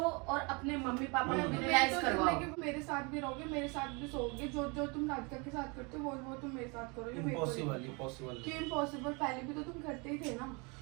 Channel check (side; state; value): left; quieter; 30.4 dB